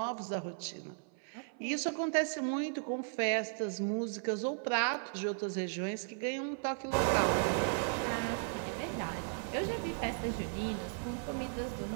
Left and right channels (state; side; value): silent; left; 54 dB below the other